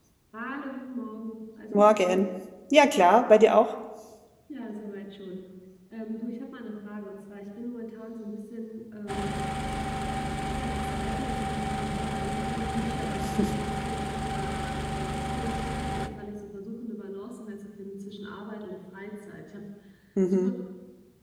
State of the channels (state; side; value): identical; both; correlation 1.00